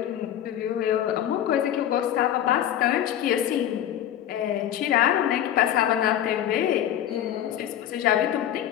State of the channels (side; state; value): right; quieter; 11.1 dB